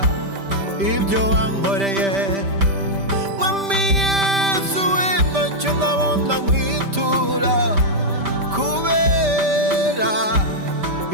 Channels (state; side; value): late; left; 5.1 ms